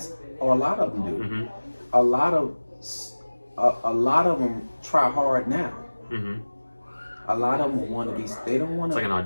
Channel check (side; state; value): both; inverted; correlation -1.00